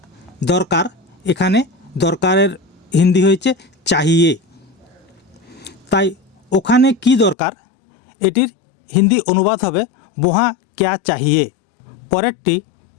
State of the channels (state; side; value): drops out; right; at 7.4 s